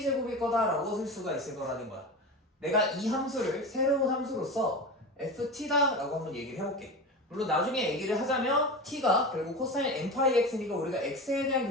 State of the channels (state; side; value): normal; both; correlation 0.27